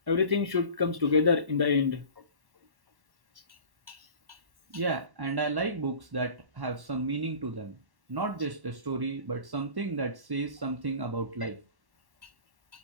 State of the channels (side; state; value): left; late; 1.1 ms